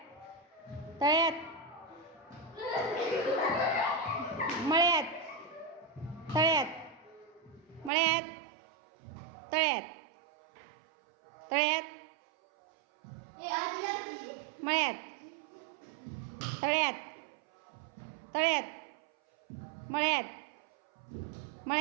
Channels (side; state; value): left; drops out; at 7.9 s